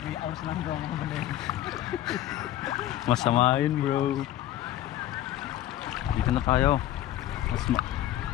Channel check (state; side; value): quieter; right; 13.2 dB